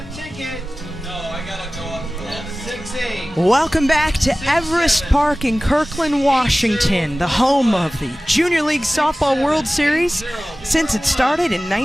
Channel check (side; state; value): both; normal; correlation 0.97